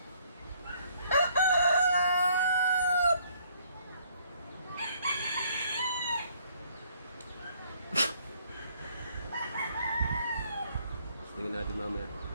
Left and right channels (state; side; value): inverted; both; correlation -0.64